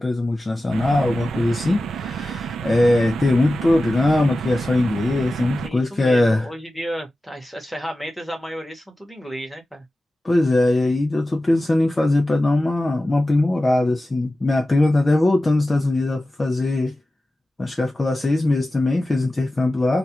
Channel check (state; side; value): normal; both; correlation 0.94